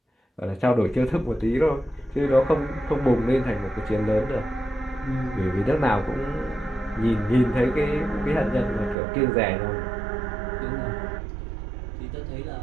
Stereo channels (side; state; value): left; drops out; at 9.0 s